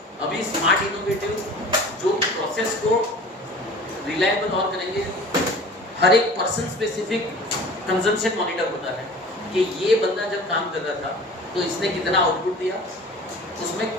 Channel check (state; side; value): normal; both; correlation 0.42